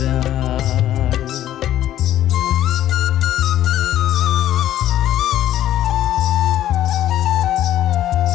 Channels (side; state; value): right; quieter; 12.5 dB